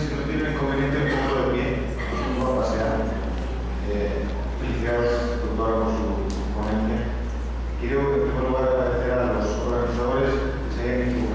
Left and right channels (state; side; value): identical; both; correlation 1.00